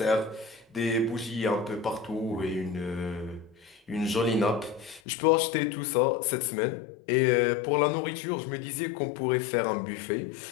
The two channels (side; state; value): right; drops out; at 5.0 s